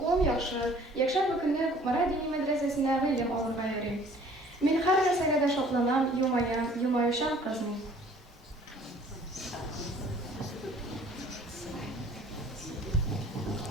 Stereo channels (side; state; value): both; normal; correlation 0.53